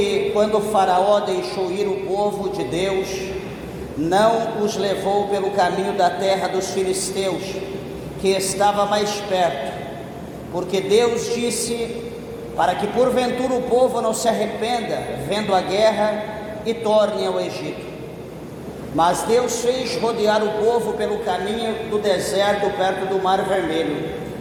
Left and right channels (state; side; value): identical; both; correlation 1.00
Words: quando o faraó deixou ir o povo de Deus, não os levou pelo caminho da terra dos filisteus, que estava mais perto, porque Deus disse, para que porventura o povo não se arrependa, vendo a guerra, e torne ao Egito. Mas Deus fez rodear o povo pelo caminho do deserto, perto do Mar Vermelho.